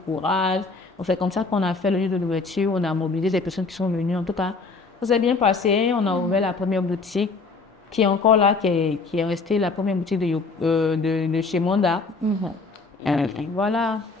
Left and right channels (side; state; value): right; quieter; 4.1 dB